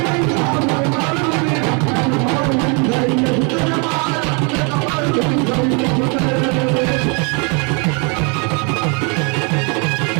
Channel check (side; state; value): left; quieter; 34.3 dB